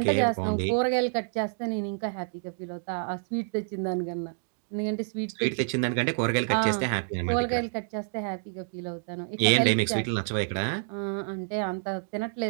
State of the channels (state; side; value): silent; left; digital silence